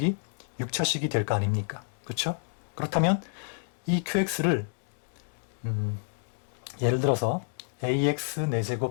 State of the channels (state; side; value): silent; right; digital silence